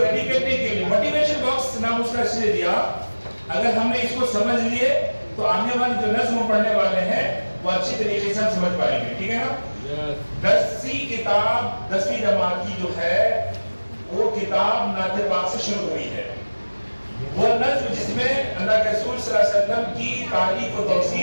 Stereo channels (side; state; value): both; inverted; correlation -1.00